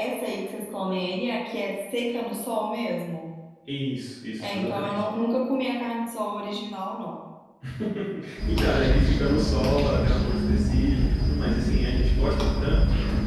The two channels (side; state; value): both; identical; correlation 1.00